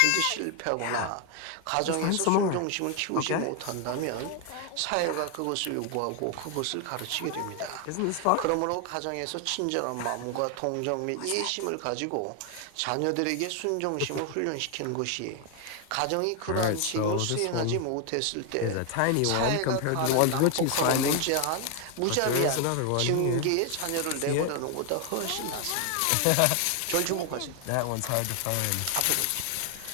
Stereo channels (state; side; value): different; both; correlation 0.01